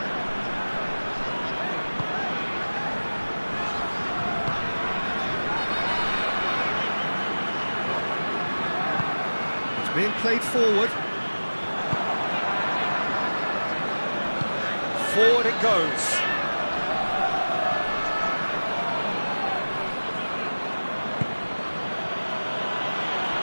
It's being played forward. Forward it goes.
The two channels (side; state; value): both; inverted; correlation -1.00